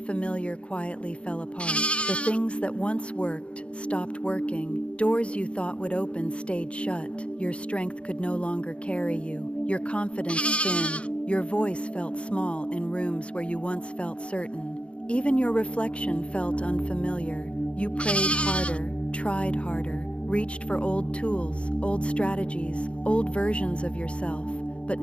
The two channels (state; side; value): late; right; 0.059 ms